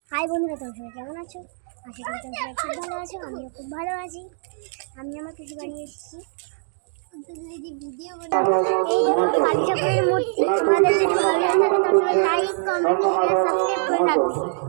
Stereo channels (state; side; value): silent; left; digital silence